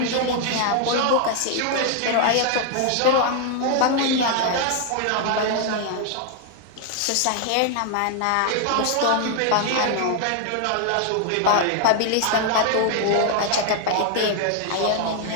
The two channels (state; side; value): different; both; correlation 0.00